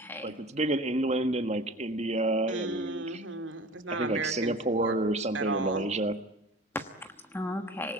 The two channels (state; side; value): normal; both; correlation 0.40